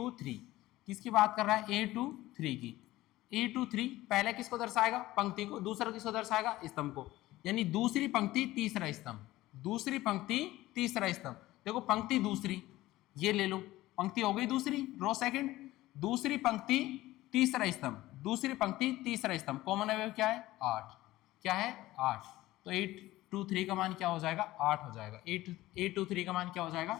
किसकी बात कर रहा है, A23 की, A23 पहले किसको दर्शाएगा, पंक्ति को, दूसरा किसको दर्शाएगा, स्तंभ को, यानी दूसरी पंक्ति तीसरा स्तंभ, दूसरी पंक्ति तीसरा स्तंभ। देखो पंक्ति दूसरी, ये ले लो, पंक्ति हो गई दूसरी, रो सेकंड, दूसरी पंक्ति तीसरा स्तंभ, दूसरी पंक्ति तीसरा स्तंभ, कॉमन अवयव क्या है 8, क्या है 8, तो 823 का मान क्या हो जाएगा 8 हो जाएगा, 823 का मान क्या हो जाएगा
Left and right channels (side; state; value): right; quieter; 16.9 dB